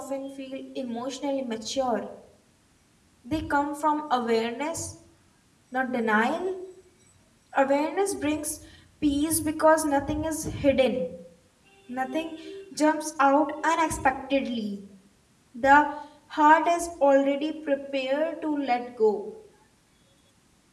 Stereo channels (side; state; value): both; identical; correlation 1.00